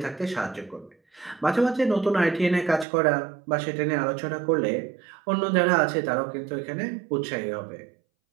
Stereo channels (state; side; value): drops out; left; at 2.9 s